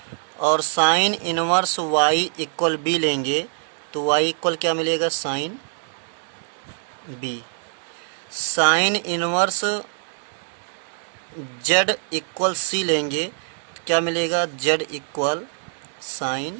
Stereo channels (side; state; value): left; silent; 62 dB below the other